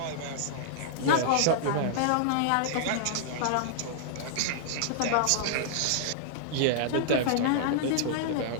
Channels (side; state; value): both; different; correlation -0.01